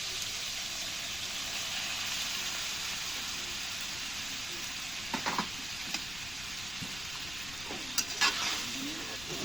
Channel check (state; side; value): noise; left; rumble, 12 dB below the sound